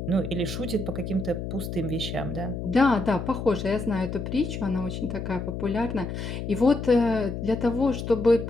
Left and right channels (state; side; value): noise; left; hum, 5 dB below the sound